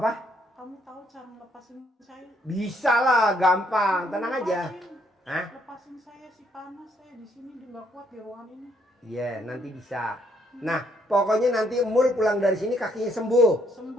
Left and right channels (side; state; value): both; normal; correlation 0.71